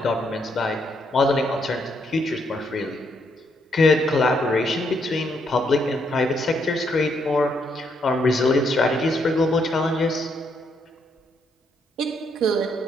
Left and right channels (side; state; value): both; normal; correlation 0.75